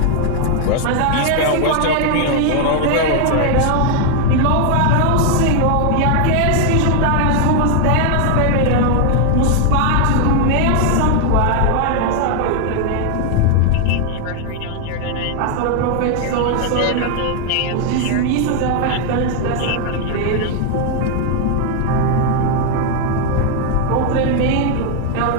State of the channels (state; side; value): different; both; correlation 0.00